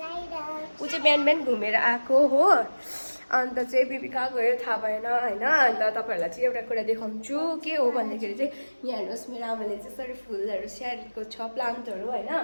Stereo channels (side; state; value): both; inverted; correlation -1.00